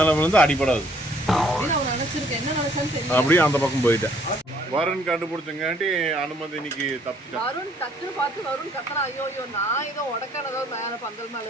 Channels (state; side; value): normal; both; correlation 0.62